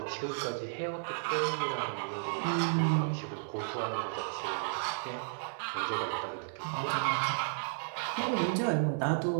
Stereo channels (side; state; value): left; silent; digital silence